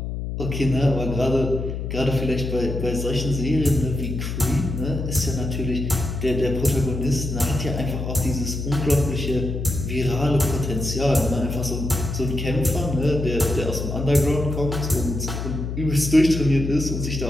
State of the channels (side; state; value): left; noise; hum, 4 dB below the sound